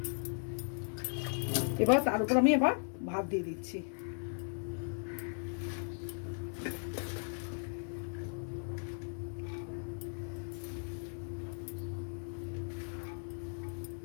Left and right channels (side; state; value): right; silent; 53 dB below the other